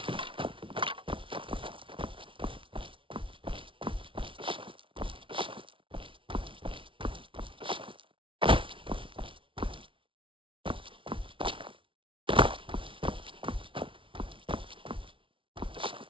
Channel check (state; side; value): late; left; 0.25 ms